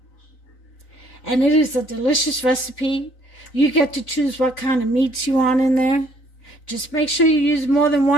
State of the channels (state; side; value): late; right; 3.9 ms